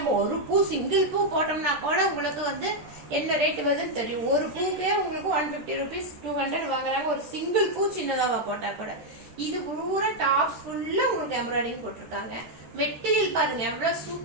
ஒரு பூ சிங்கிள் பூ போட்டோம்னா கூட உங்களுக்கு வந்து என்ன ரேட் வருதுன்னு தெரியும். ஒரு பூக்கே உங்களுக்கு 150 rupees 200 வாங்குறாங்க, ஒரு சிங்கிள் பூ சின்னதாவா போட்டா கூட. இது பூரா டாப் ஃபுல்லா உங்களுக்கு எம்ப்ராய்டிங் போட்டிருக்காங்க. மெட்டீரியல் பாருங்க எவ்வளவு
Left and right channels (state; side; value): late; left; 13 ms